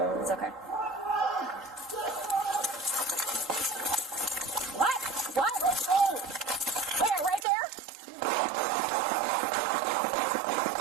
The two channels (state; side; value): drops out; left; at 7.5 s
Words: it's okay. What? What? Oh! Where? Right there?